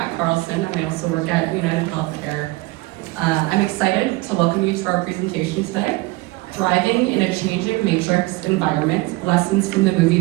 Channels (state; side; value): quieter; left; 21.5 dB